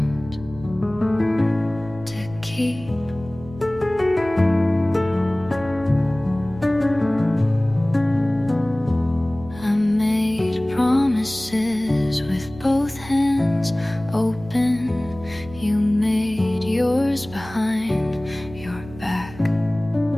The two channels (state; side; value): noise; right; hum, 17 dB below the sound